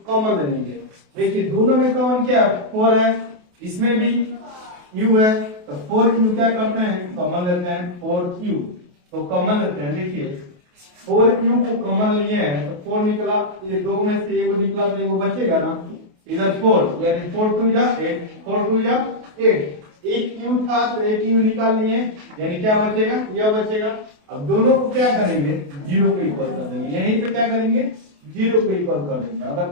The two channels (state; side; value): late; left; 28 ms